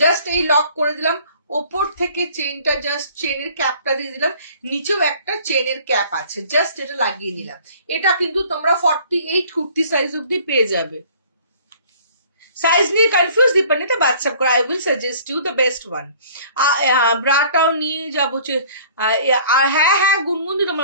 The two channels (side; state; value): both; inverted; correlation -0.52